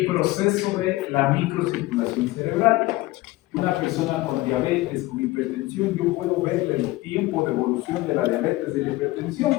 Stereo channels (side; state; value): right; quieter; 19.0 dB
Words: proceso de la microcirculación cerebral. Una persona con diabetes, con hipertensión, yo puedo ver el tiempo de evolución de la diabetes y de la hipertensión